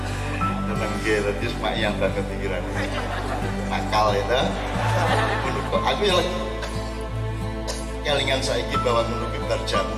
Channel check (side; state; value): both; identical; correlation 1.00